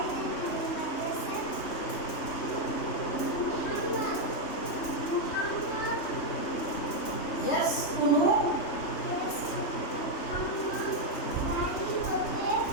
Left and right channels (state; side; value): late; right; 3.3 ms